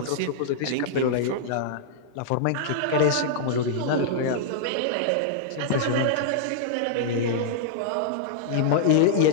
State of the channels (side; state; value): both; different; correlation -0.02